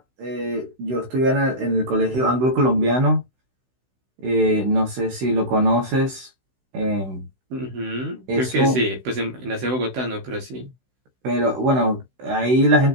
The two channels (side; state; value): left; late; 16 ms